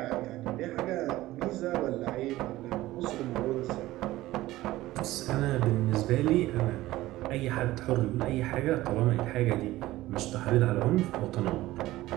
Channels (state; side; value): quieter; left; 16.8 dB